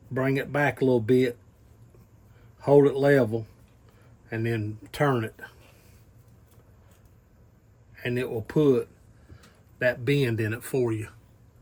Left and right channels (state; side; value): identical; both; correlation 1.00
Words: bring it back a little bit, hold it level, and then turn it, and it will put that bend in it for you.